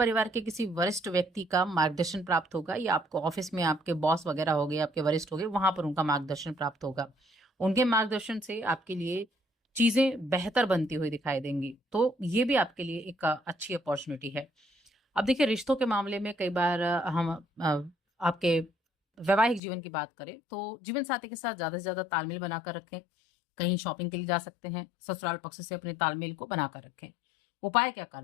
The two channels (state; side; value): drops out; right; at 19.6 s